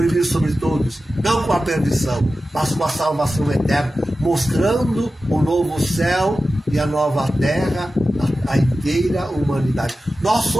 sobre todos, não com a perdição, mas com a salvação eterna, mostrando o novo céu e a nova terra, a inteira humanidade. Nós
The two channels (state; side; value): normal; both; correlation 0.94